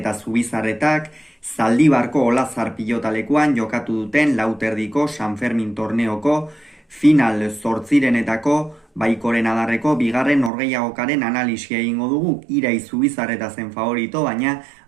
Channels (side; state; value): left; drops out; at 10.5 s